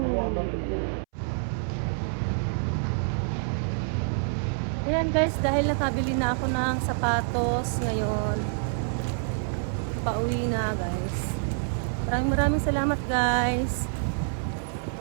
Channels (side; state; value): left; silent; 60 dB below the other